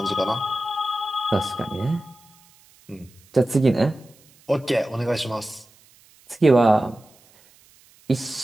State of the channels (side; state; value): right; noise; hiss, 29 dB below the sound